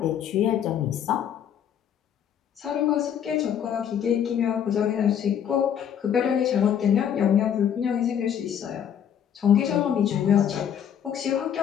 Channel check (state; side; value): quieter; right; 9.0 dB